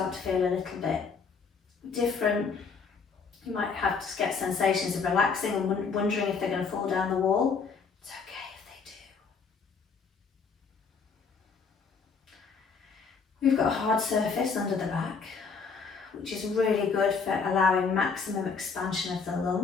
to feel a little bit different. You might have to get sensations of relaxing and wondering if they're going to fall down the wall. It's okay if they do. We've got a hard surface under the back, which is really good for allowing maximum expansion of the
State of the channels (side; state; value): right; quieter; 5.3 dB